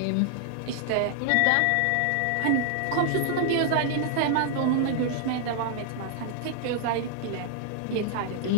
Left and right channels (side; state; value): both; different; correlation -0.01